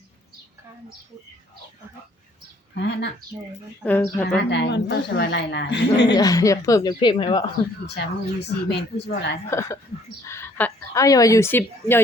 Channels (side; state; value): both; normal; correlation 0.61